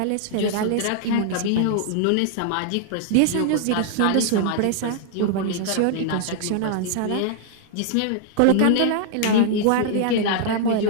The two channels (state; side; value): different; both; correlation -0.01